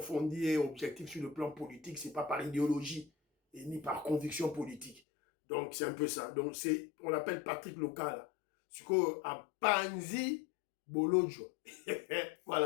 et objective sur le plan politique. Ce n'est pas par idéologie et ni par conviction politique. Donc, c'est un peu ça. Donc, on l'appelle Patrick Local. Ce qu'on a Panzi Bolodjo.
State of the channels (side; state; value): right; drops out; at 5.0 s